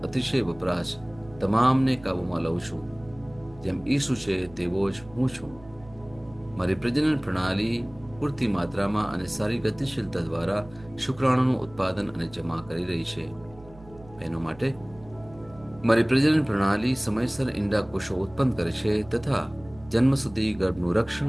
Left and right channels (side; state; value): right; noise; hum, 22 dB below the sound